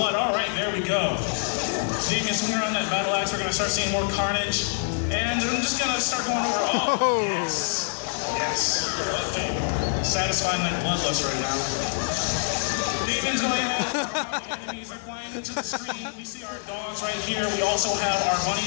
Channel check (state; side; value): silent; right; digital silence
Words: Alright, there we go. Damien's swinging around that battle axe. We're gonna start seeing more carnage. And I'm just gonna start going over. Oh, yes. Yes. Okay. Satisfying that bloodlust right now. Damien's going ahead. Our enemies are flying into the screen. We see our dogs right here. We also have our